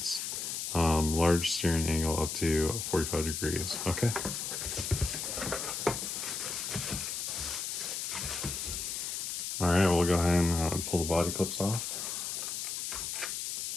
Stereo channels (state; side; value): noise; left; hiss, 3 dB below the sound